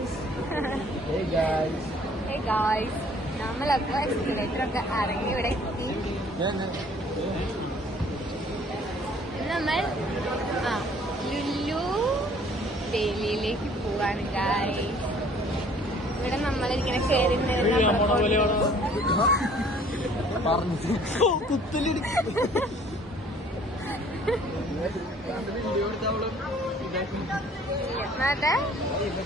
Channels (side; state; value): both; normal; correlation 0.56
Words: നമ്മളപ്പോ എക്സ്കലേറ്റർ ഒക്കെ ഇറങ്ങി ഇവിടെ എത്തി. നമ്മൾ ലുലു ഡൽഹിയിലേക്ക് പോവാണ് ഗായ്സ്. ഇവിടെ നമ്മളിങ്ങനെ കയറി